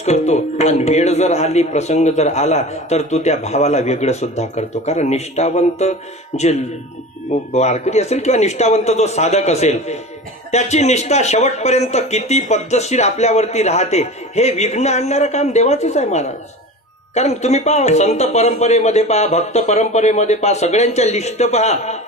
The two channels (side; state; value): both; normal; correlation 0.33